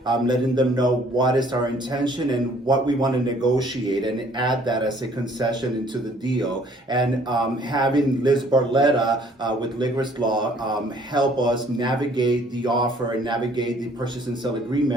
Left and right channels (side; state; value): both; normal; correlation 0.59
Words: letting them know what is our intention and what we want to negotiate, and add that as a concession into the deal. And having Liz Barletta with Ligris Law help us navigate the offer and navigate the purchase and sale